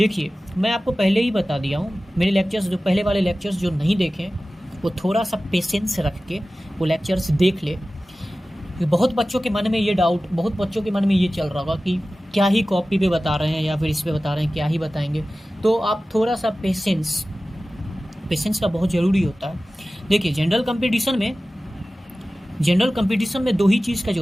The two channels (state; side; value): normal; both; correlation 0.96